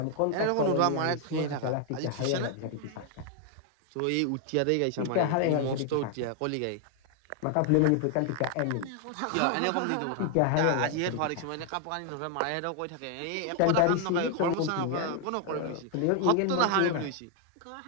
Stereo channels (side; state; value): both; different; correlation 0.00